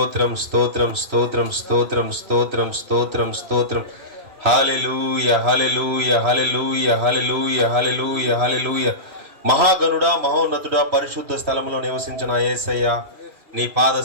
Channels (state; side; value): late; left; 3.1 ms